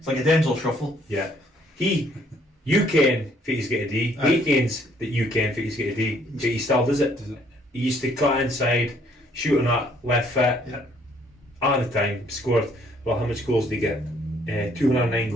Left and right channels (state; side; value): normal; both; correlation 0.65